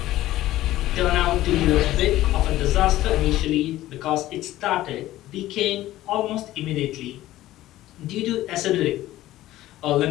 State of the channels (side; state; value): right; quieter; 15.2 dB